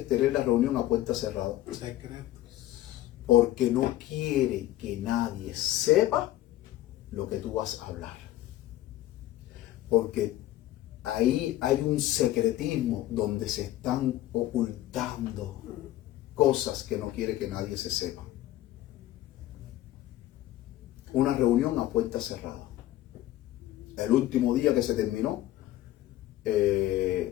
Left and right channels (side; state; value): right; quieter; 14.7 dB